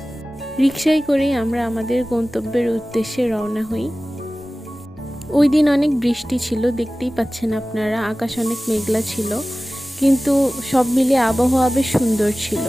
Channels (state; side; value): normal; both; correlation 0.97